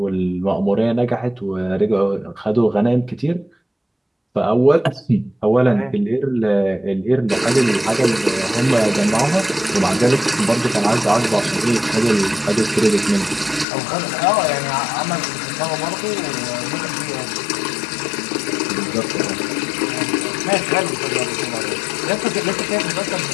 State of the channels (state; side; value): drops out; right; at 13.7 s